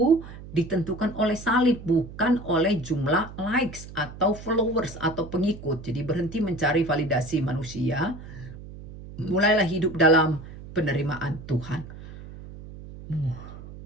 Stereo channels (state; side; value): noise; right; hum, 14 dB below the sound